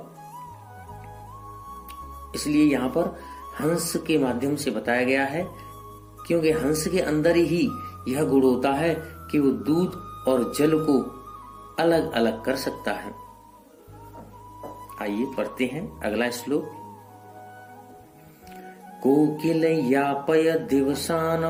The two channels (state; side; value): identical; both; correlation 1.00